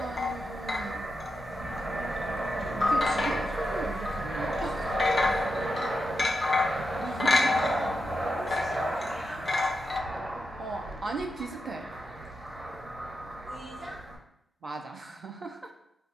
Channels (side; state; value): both; normal; correlation 0.87